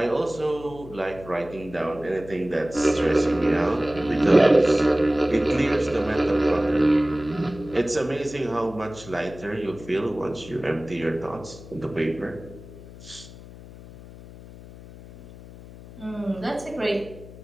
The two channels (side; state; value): left; noise; hum, 17 dB below the sound